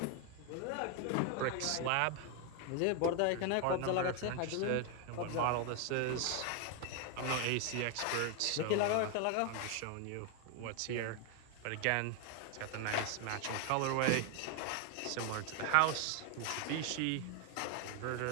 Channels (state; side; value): different; both; correlation 0.01